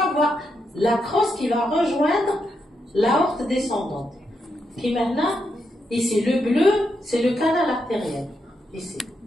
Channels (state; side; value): normal; both; correlation 0.82